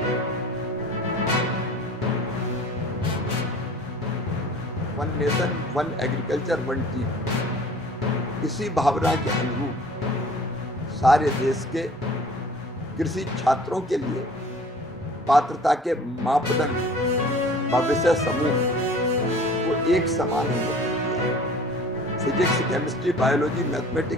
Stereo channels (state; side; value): normal; both; correlation 0.47